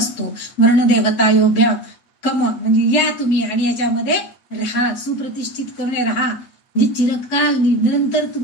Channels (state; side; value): late; right; 8.4 ms